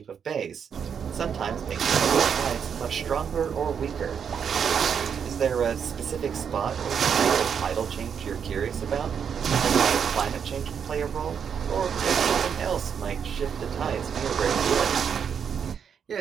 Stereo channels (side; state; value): left; quieter; 7.3 dB